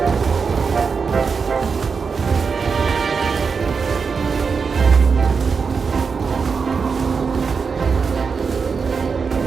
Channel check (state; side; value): quieter; left; 5.4 dB